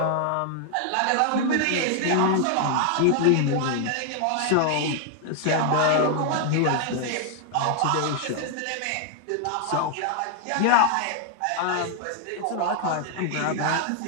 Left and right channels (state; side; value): different; both; correlation 0.00